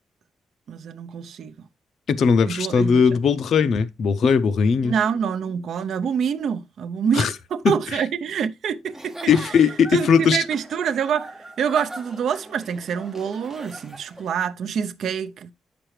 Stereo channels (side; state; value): both; normal; correlation 0.72